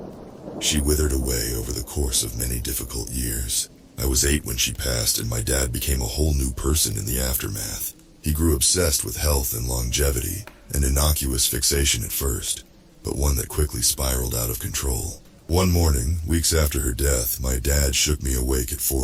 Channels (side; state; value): both; identical; correlation 1.00